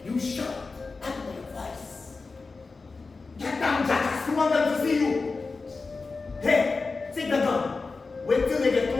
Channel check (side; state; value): right; quieter; 4.1 dB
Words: You shout at my voice. Get down, Jack! We want them to see you! Hey, take the gun. Wait till they get